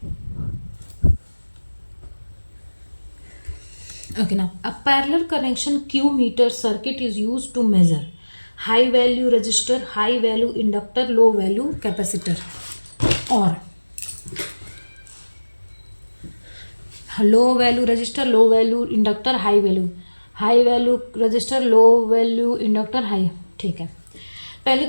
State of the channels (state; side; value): inverted; both; correlation -1.00